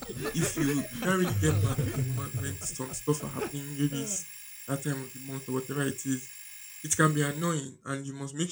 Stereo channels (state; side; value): identical; both; correlation 1.00